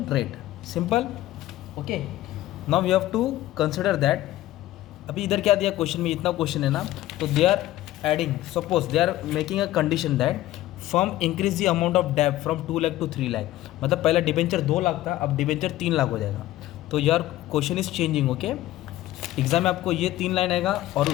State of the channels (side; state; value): right; quieter; 15.2 dB